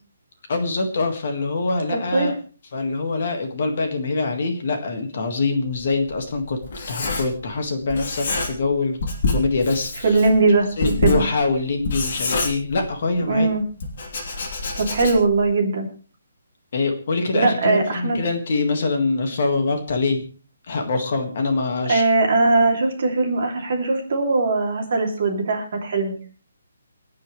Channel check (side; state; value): both; inverted; correlation -0.74